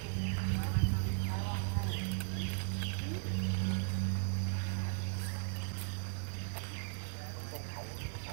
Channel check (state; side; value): silent; left; 53 dB below the other